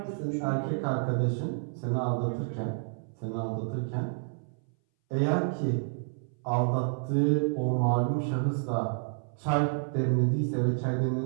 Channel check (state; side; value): silent; left; 58 dB below the other